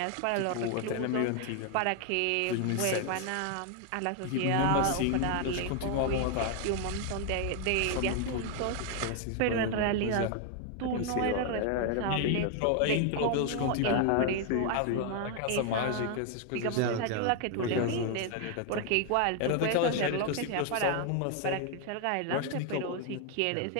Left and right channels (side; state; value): both; different; correlation 0.01